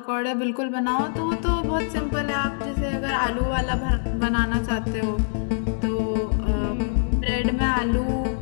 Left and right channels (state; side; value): silent; right; digital silence